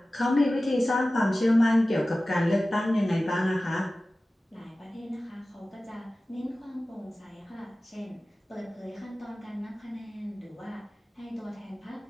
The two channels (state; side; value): normal; both; correlation 0.96